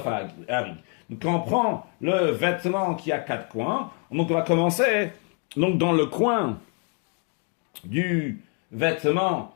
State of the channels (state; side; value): quieter; right; 37.1 dB